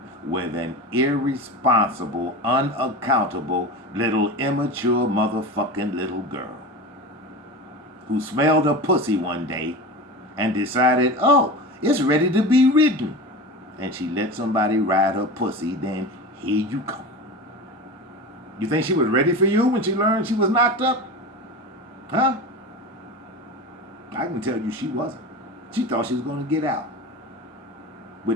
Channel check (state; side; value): normal; both; correlation 0.28